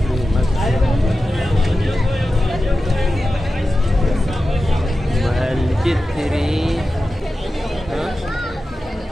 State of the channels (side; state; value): both; normal; correlation 0.93